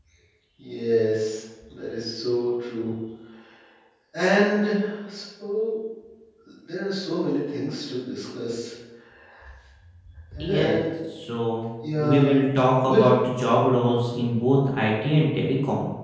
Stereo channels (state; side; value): identical; both; correlation 1.00